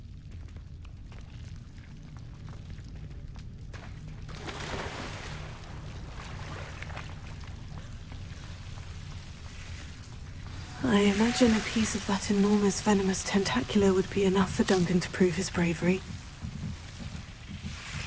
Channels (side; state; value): both; identical; correlation 1.00